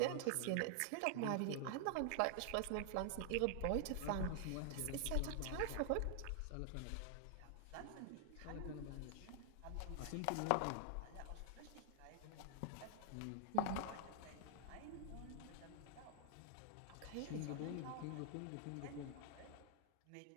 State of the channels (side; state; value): both; different; correlation 0.00